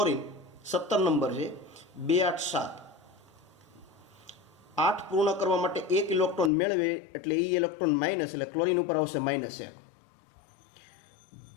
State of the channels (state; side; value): drops out; right; at 6.5 s